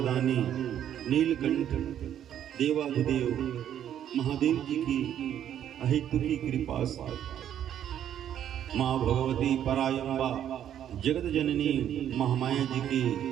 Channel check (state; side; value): quieter; left; 10.3 dB